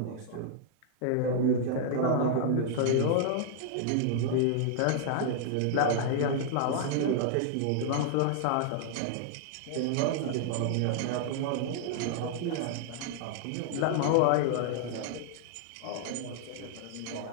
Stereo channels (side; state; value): both; different; correlation -0.01